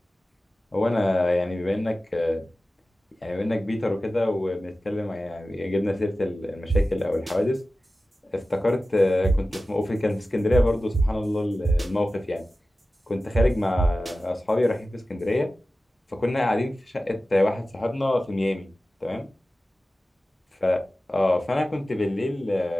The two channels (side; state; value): both; normal; correlation 0.95